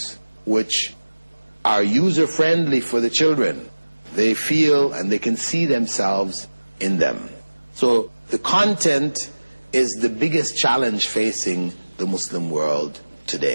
which are user-friendly for the children. They feel and they can see themselves in them. So the content is the biggest challenge facing the Muslim world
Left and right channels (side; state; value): both; inverted; correlation -1.00